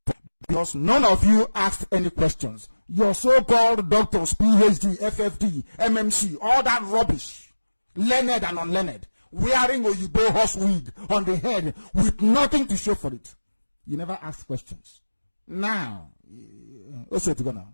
because none of you asked any questions. Your so-called doctors, PhD, FFD, MMC, all that rubbish, learned and unlearned, wearing Oyibo horse wig on the head with nothing to show for it. You never asked questions. Now, also to go now.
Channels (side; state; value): both; inverted; correlation -1.00